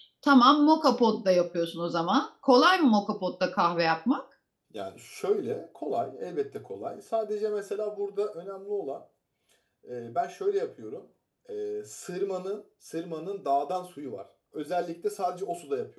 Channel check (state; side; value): identical; both; correlation 1.00